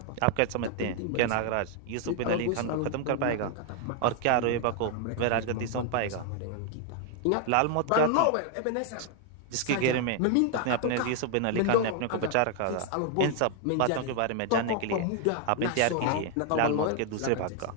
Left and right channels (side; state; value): both; different; correlation 0.00